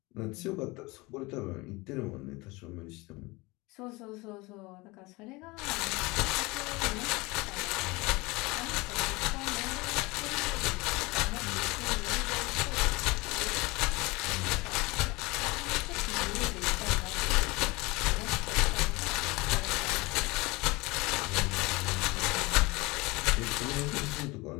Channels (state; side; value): quieter; right; 23.6 dB